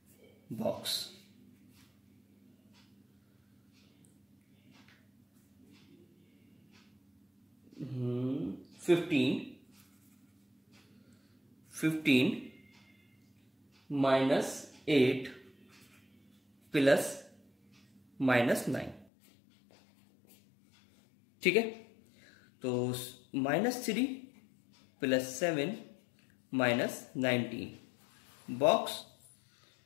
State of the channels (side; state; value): right; drops out; at 19.1 s